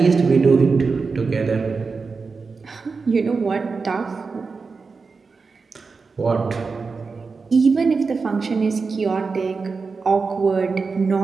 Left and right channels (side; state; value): left; quieter; 4.6 dB